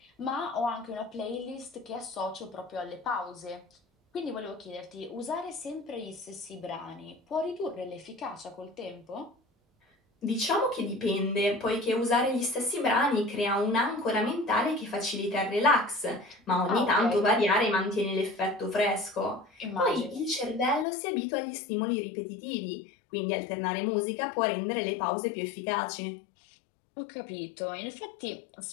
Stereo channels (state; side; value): drops out; right; at 20.9 s